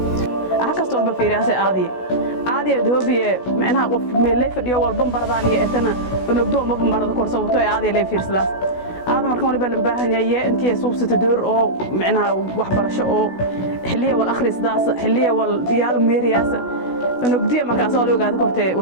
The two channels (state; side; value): late; right; 16 ms